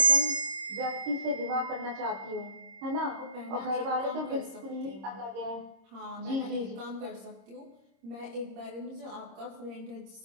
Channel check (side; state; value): left; late; 26 ms